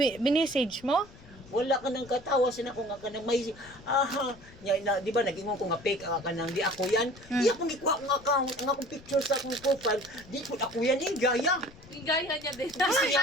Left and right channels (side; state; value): left; noise; rumble, 22 dB below the sound